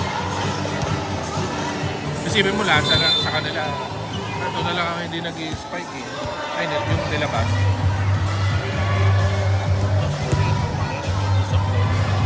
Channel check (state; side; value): identical; both; correlation 1.00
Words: Isipin mo lahat sa kanila. Ito na lang ang hindi nag-i-spike eh. Ay, yung nilabas.